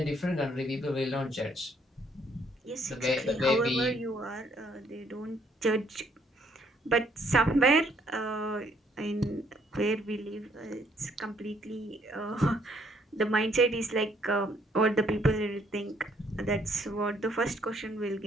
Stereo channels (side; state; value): both; normal; correlation 0.67